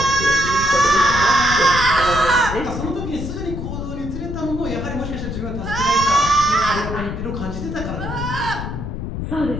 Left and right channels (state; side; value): noise; left; rumble, 6 dB below the sound